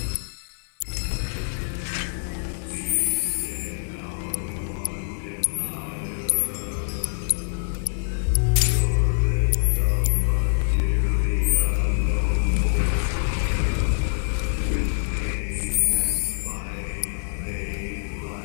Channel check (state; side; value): silent; right; 55 dB below the other